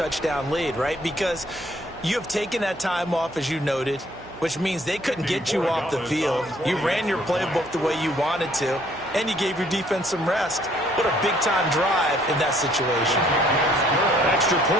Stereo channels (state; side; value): noise; right; hum, 20 dB below the sound